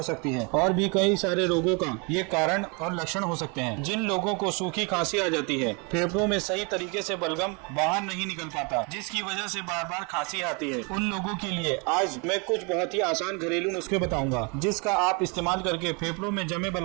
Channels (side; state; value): left; quieter; 32.6 dB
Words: सकती है और भी कई सारे रोगों का ये कारण और लक्षण हो सकते हैं। जिन लोगों को सूखी खांसी आ जाती है, फेफड़ों में सही तरीके से बलगम बाहर नहीं निकल पाता, जिसकी वजह से बार बार खांसी आती है, उन लोगों के लिए आज मैं कुछ बहुत ही आसान घरेलू नुस्खे बताऊंगा, जिसका आप इस्तेमाल करके फेफड़ों में जमे